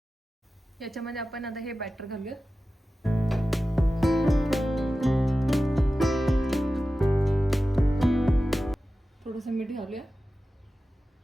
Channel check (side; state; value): both; normal; correlation 0.94